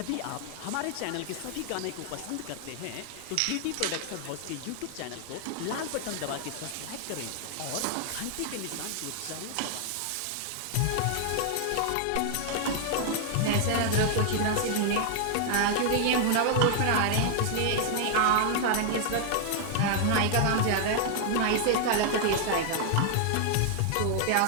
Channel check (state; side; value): different; both; correlation 0.00